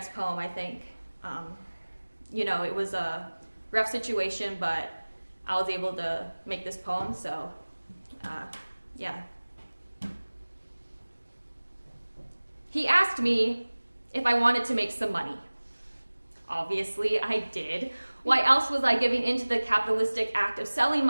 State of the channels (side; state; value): both; inverted; correlation -1.00